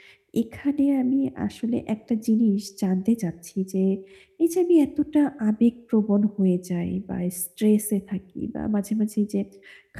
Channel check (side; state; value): both; identical; correlation 1.00